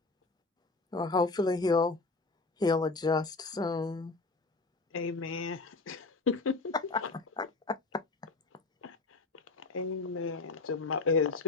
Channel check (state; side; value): quieter; right; 3.6 dB